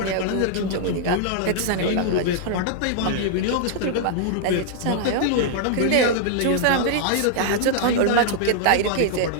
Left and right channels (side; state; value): both; different; correlation -0.01